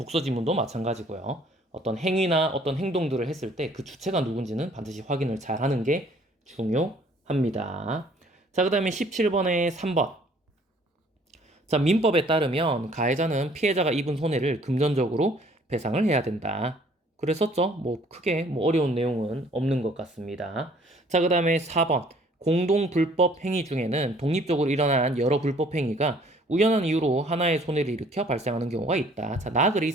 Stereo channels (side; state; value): both; normal; correlation 0.58